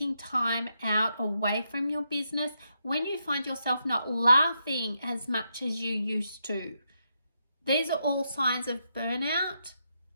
time out away from your business, when you find yourself not laughing as much as you used to. These are all signs of burnout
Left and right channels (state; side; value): inverted; both; correlation -0.82